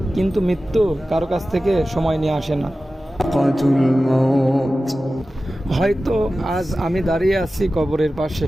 কিন্তু মৃত্যু কারো কাছ থেকে সময় নিয়ে আসে না। হয়তো আজ আমি দাঁড়িয়ে আছি কবরের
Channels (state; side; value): normal; both; correlation 0.95